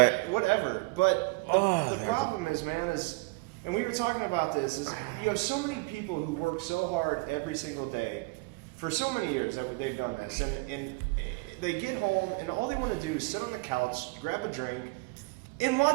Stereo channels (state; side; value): quieter; left; 25.7 dB